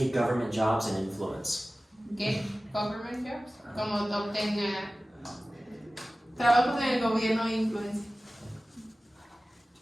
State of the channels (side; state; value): both; normal; correlation 0.97